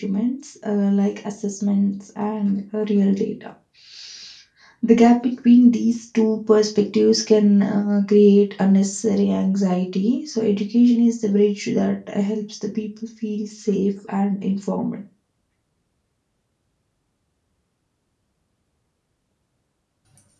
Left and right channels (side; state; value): both; identical; correlation 1.00